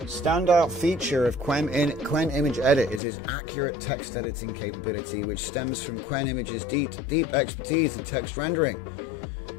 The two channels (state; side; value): drops out; right; at 3.0 s